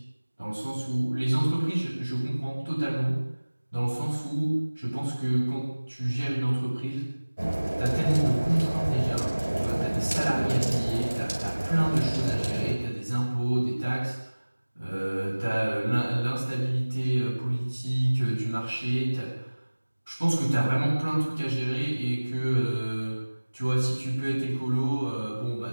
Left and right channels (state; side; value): inverted; both; correlation -1.00